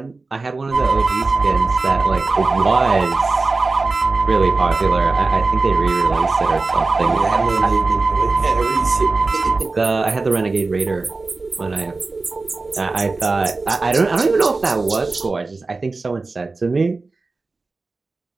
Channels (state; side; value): quieter; left; 3.7 dB